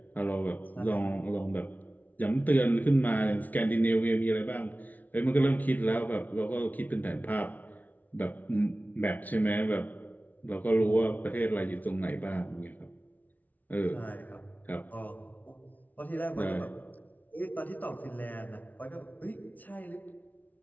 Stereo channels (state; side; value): late; right; 0.077 ms